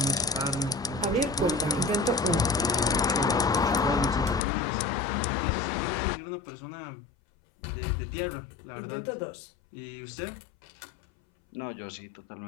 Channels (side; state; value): right; drops out; at 4.4 s